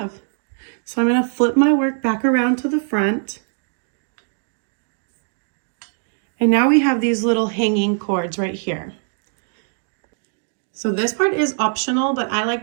So I'm gonna flip my work back around to the front. And now we have these little hanging cords right here. So this part is optional, but I like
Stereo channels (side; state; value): left; silent; 65 dB below the other